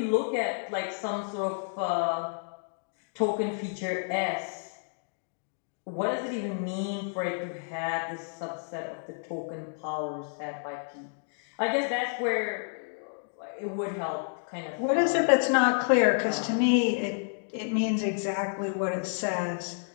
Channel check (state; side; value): silent; right; digital silence